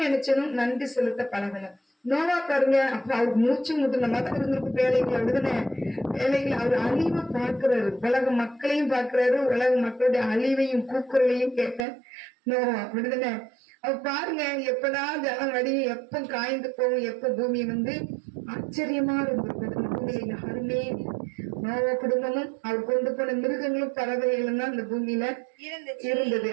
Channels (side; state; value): left; drops out; at 11.9 s